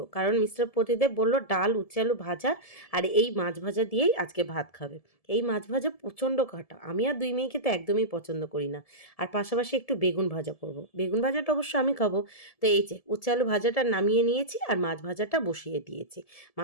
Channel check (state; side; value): late; right; 1.7 ms